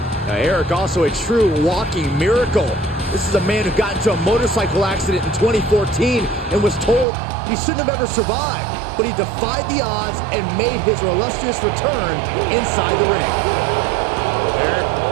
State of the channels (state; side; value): drops out; left; at 7.1 s